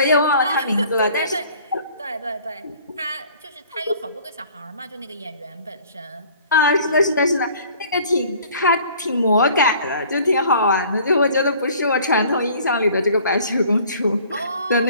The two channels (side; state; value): both; inverted; correlation -0.52